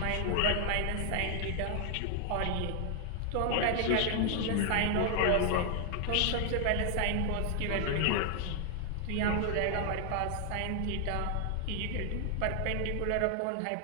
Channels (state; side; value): different; both; correlation 0.00